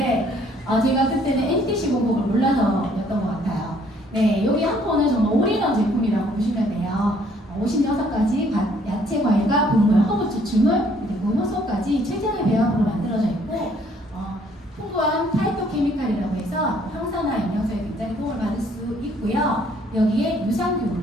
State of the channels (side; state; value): both; normal; correlation 0.63